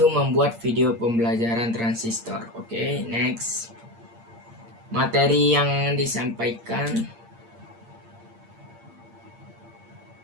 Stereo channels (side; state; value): left; late; 8.6 ms